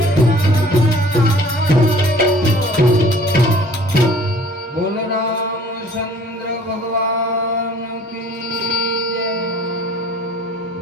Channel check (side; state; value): both; normal; correlation 0.52